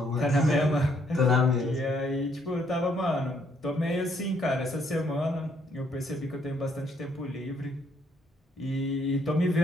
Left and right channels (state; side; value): normal; both; correlation 0.69